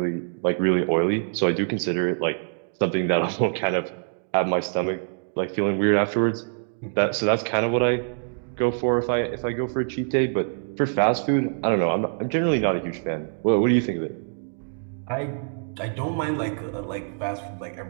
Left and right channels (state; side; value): silent; left; digital silence